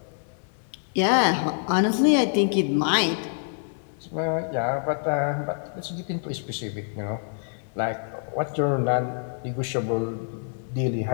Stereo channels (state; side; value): silent; right; digital silence